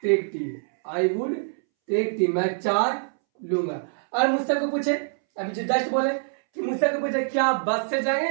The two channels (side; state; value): left; silent; 62 dB below the other